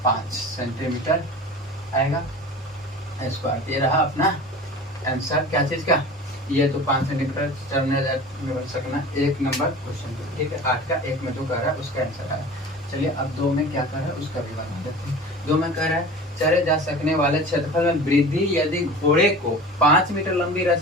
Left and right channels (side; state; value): both; normal; correlation 0.37